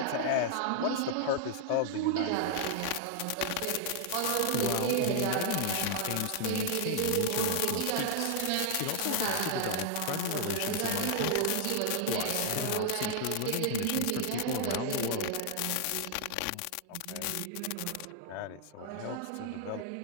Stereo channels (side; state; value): both; different; correlation -0.01